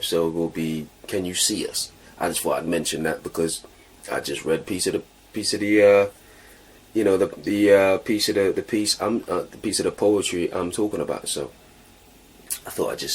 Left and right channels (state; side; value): identical; both; correlation 1.00